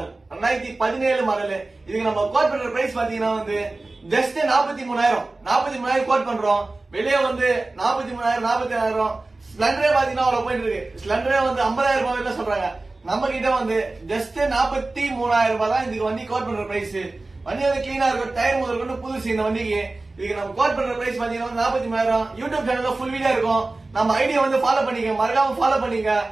2017 மாடல். இதுக்கு நம்ம கோட் பண்ற பிரைஸ் பாத்தீங்கன்னா ஜஸ்ட் 43,000 கோட் பண்றோம். வெளியே 43,000 47,000. ஸ்பிளண்டரே பாத்தீங்கன்னா அவ்வளவு போயிட்டு இருக்கு. ஸ்பிளண்டரே 50,000 ரூபாய் சொல்றாங்க. நம்ம கிட்ட ஜஸ்ட் 43,000 ரூபாய் தான் இதுக்கு வண்டி கோட் பண்ற பிரைஸ். வண்டி கிளீனா இருக்கும், டயர் முதல் கொண்டு புதுசு இந்த வண்டிக்கு. இதுக்கு நம்ம கோட் பண்ற பிரைஸ் பாத்தீங்கன்னா 43,000. யூடியூப் சேனல்ல ஃபுல் வீடியோ இருக்கும். நம்ம ஐடியா ஃபாலோ பண்ணிக்க, மறக்காம ஃபாலோ பண்ணிக்க.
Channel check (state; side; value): quieter; left; 3.2 dB